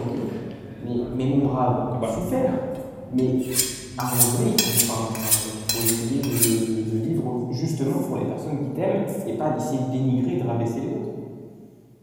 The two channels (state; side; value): identical; both; correlation 1.00